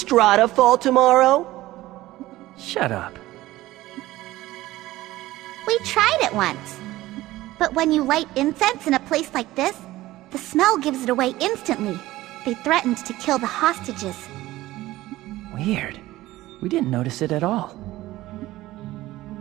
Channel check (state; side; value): quieter; left; 16.8 dB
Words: fall tomorrow? Shut up. We tried it once. But when you light incense in a place like this, the smell gives it away instantly. They threatened to kill the hostages. Weird. We didn't notice it at all.